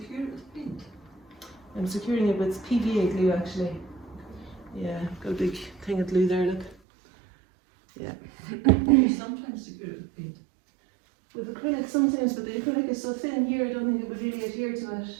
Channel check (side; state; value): left; drops out; at 6.8 s